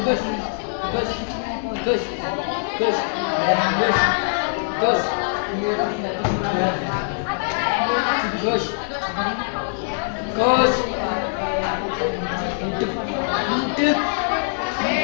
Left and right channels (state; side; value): silent; right; digital silence